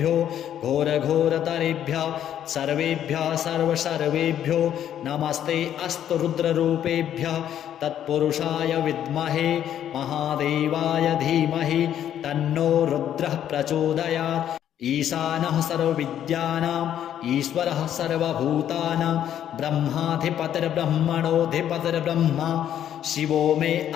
घोरघोरतरेभ्यः सर्वेभ्यः सर्वसर्वेभ्यो नमस्ते अस्तु रुद्ररूपेभ्यः तत्पुरुषाय विद्महे महादेवाय धीमहि तन्नो रुद्रः प्रचोदयात् ईशानः सर्वविद्यानाम् ईश्वरः सर्वभूतानां ब्रह्माधिपतिर्ब्रह्मणोऽधिपतिर्ब्रह्मा शिवो मे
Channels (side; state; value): right; quieter; 10.4 dB